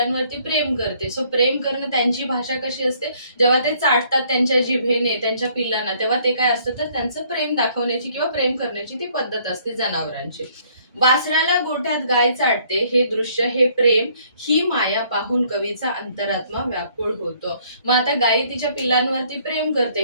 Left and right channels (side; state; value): both; inverted; correlation -0.63